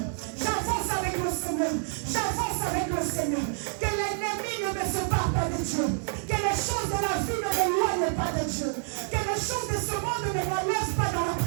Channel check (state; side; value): silent; left; 59 dB below the other